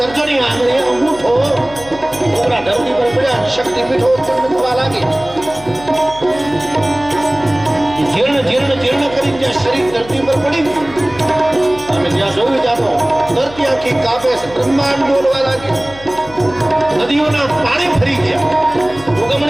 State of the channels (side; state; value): left; noise; hum, 18 dB below the sound